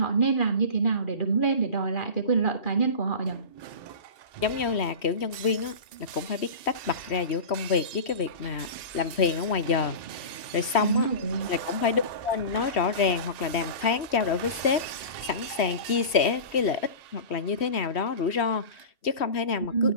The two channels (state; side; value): late; right; 3.1 ms